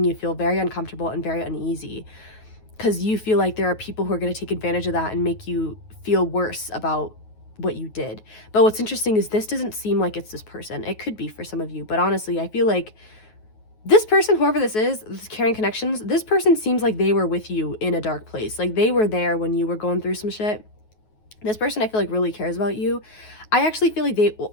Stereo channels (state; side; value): late; right; 9.4 ms